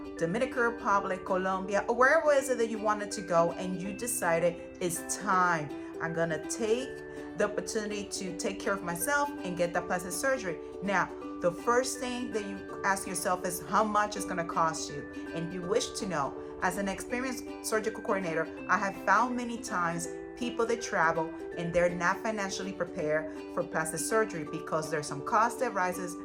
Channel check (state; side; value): identical; both; correlation 1.00